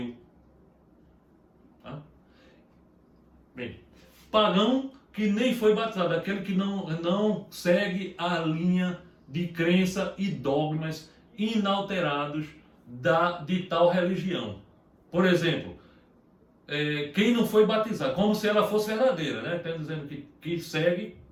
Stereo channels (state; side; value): identical; both; correlation 1.00